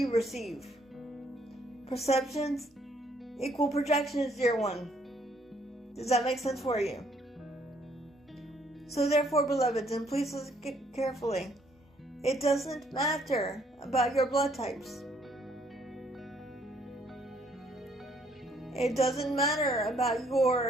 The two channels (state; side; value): normal; both; correlation 0.66